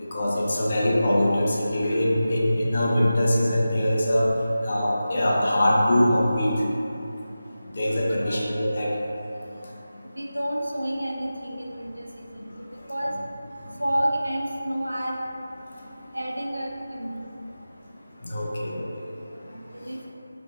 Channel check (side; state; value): both; inverted; correlation -0.94